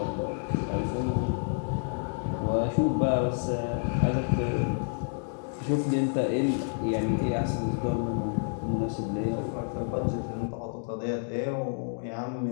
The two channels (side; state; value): right; silent; digital silence